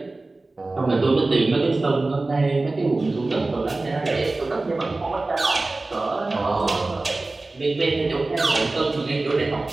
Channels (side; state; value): left; quieter; 3.2 dB